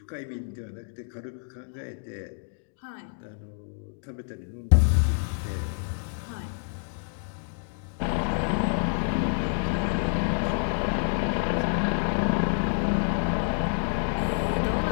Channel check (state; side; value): silent; right; digital silence